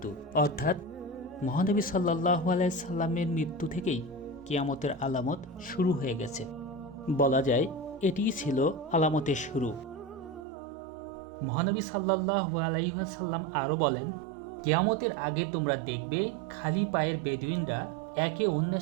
অর্থাৎ মহানবী সাল্লাল্লাহু আলাইহি সাল্লামের মৃত্যু থেকেই কিয়ামতের আলামত শুরু হয়ে গেছে। বলা যায় এটিই ছিল আলামতের শুরু। মহানবী সাল্লাল্লাহু আলাইহি ওয়াসাল্লাম আরও বলেন, কিয়ামতের আগে তোমরা দেখবে খালি পায়ের বেদুইনরা একে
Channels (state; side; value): drops out; left; at 10.5 s